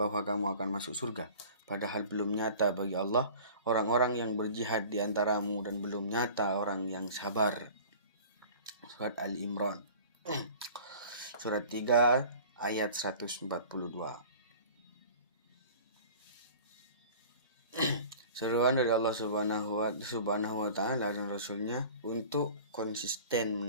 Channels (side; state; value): both; inverted; correlation -0.43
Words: kamu akan masuk surga, padahal belum nyata bagi Allah orang-orang yang berjihad di antaramu, dan belum nyata orang yang sabar. Surat Al-Imran surat 3 ayat 142. Seruan dari Allah Subhanahu wa taala dan Rasulnya untuk konsisten